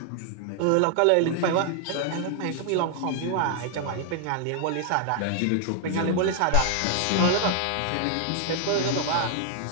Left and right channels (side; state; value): both; different; correlation 0.00